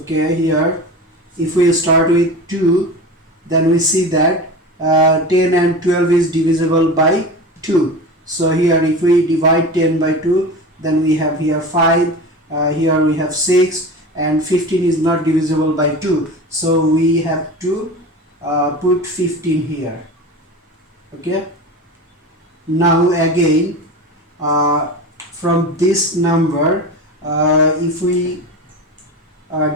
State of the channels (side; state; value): both; normal; correlation 0.30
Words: here if we start with 2, then we see that 10 and 12 is divisible by 2. So here if we divide 10 by 2, then we have here 5, here we have 6, and 15 is not divisible by 2. So we have to put 15 here. Okay. Now again from this number, if we